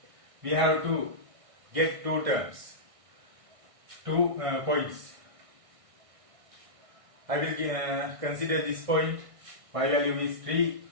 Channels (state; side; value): late; left; 1.6 ms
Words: we have to get two terms, two points. I will consider this point. Y value is 3,